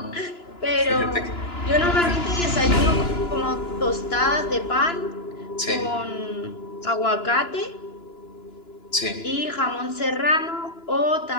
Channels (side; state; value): right; late; 2.9 ms